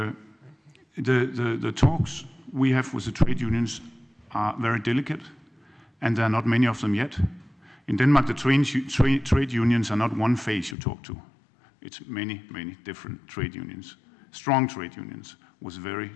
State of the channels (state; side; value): drops out; right; at 10.8 s